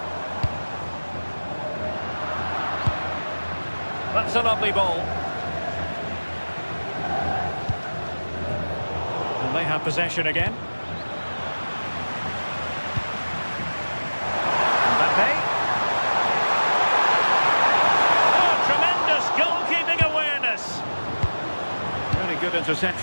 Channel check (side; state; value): both; inverted; correlation -1.00